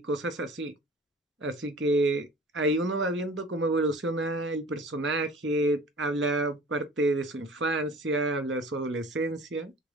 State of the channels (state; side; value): normal; both; correlation 0.45